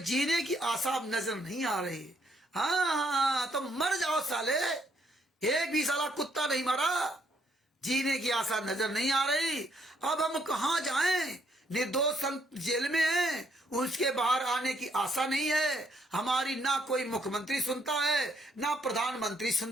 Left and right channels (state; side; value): normal; both; correlation 0.70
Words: जीने की आशा नजर नहीं आ रही। हाँ, तो मर जाओ साले, एक भी साला कुत्ता नहीं मरा, जीने की आशा नजर नहीं आ रही। अब हम कहां जाएं? निर्दोष संत जेल में हैं, उसके बाहर आने की आशा नहीं है। हमारी ना कोई मुख्यमंत्री सुनता है, ना प्रधानमंत्री